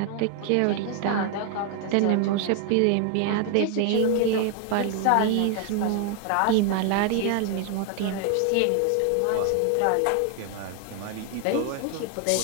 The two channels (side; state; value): both; different; correlation 0.00